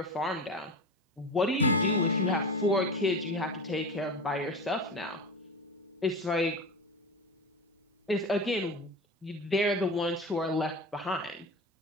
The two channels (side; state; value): both; normal; correlation 0.27